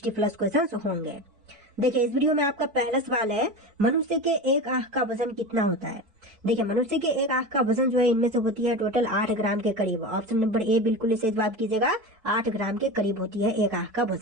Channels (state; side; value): late; left; 4.5 ms